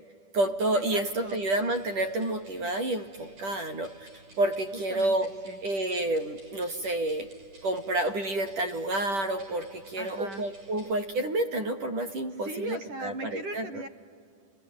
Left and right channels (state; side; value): late; left; 10 ms